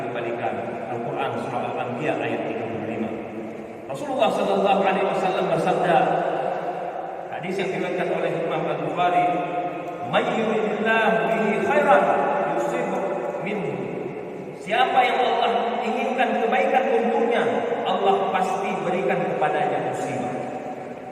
Al-Quran surah Al-Anbiya ayat 35. Rasulullah sallallahu alaihi wasallam bersabda, hadis yang diriwayatkan oleh Imam Al-Bukhari, "May yuridillahu bihi khairan yusibhu minhu." Siapa yang Allah inginkan kebaikan untuknya, Allah pasti berikan kepadanya musibah.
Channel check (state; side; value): identical; both; correlation 1.00